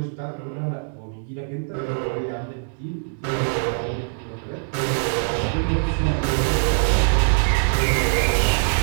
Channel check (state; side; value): silent; left; digital silence